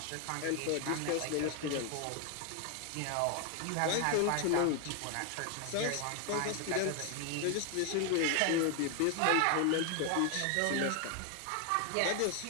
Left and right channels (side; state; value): both; different; correlation 0.00